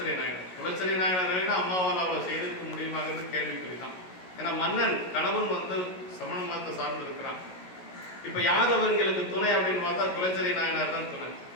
நாயனார். குலச்சிறை நாயனார் அம்மாவால் அவளை செய்திருக்க முடியுமாங்கிறது கேள்விக்குறிதான். ஏன்னா மன்னன் கணவன் வந்து சமண மதத்தை சார்ந்து இருக்கிறான். இப்ப யார் அவர்களுக்கு துணை அப்படின்னு பார்த்தா குலச்சிறை நாயனார் தான் துணை.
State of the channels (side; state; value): right; late; 16 ms